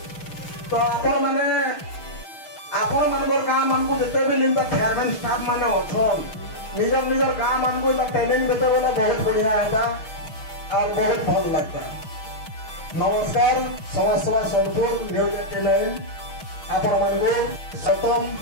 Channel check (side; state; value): right; late; 6.3 ms